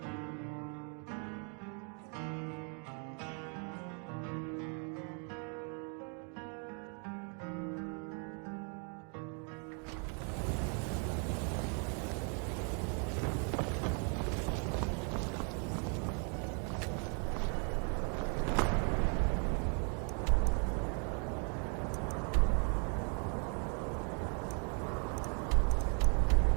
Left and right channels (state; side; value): quieter; left; 39.9 dB